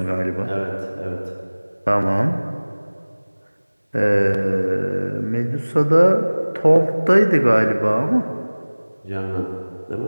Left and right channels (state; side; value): inverted; both; correlation -1.00